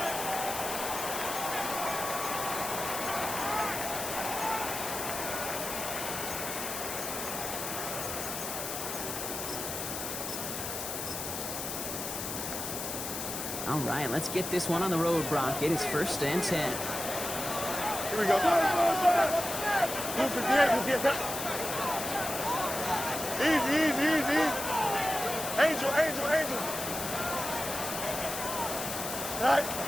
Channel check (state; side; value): noise; left; hiss, 5 dB below the sound